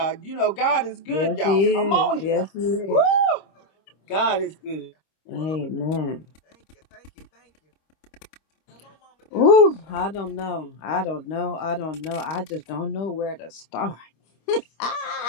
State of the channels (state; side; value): late; right; 26 ms